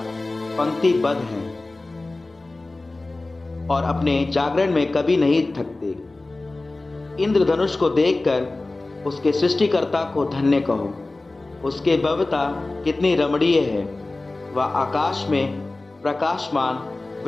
पंक्तिबद्ध हैं और अपने जागरण में कभी नहीं थकते। इंद्रधनुष को देखकर उसके सृष्टिकर्ता को धन्य कहो, उसके भव्यता कितनी रमणीय है। वह आकाश में प्रकाशमान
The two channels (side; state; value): right; quieter; 3.1 dB